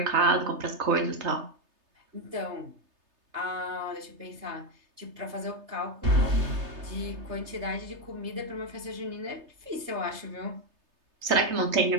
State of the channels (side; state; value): left; late; 3.3 ms